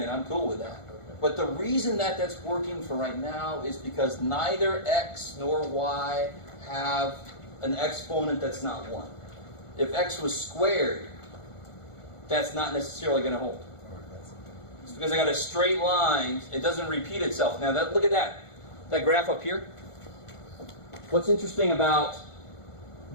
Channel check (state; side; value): late; right; 1.4 ms